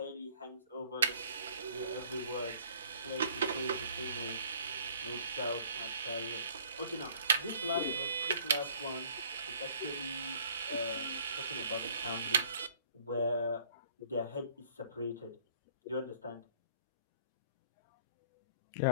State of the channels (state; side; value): inverted; both; correlation -0.55